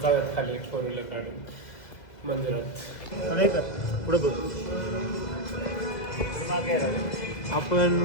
जाऊयात खाली 4 व्हीलर काढून मंदिरात. पुढे बघ.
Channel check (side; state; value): right; late; 2.0 ms